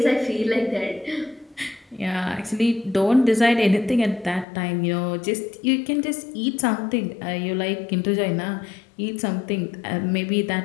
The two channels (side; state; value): right; drops out; at 4.5 s